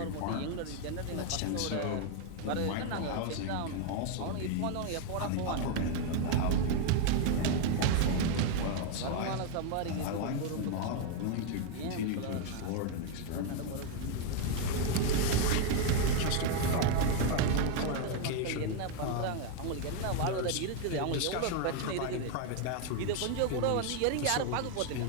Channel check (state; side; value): different; both; correlation 0.01